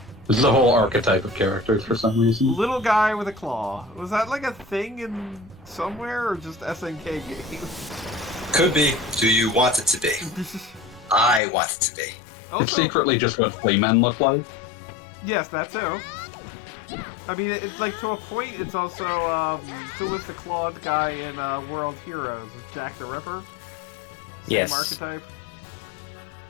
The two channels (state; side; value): drops out; right; at 11.4 s